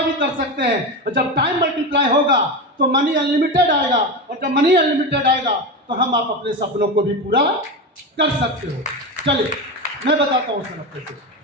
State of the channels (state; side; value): normal; both; correlation 0.20